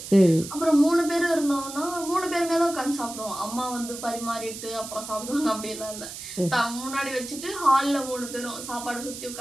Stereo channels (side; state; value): right; noise; hiss, 10 dB below the sound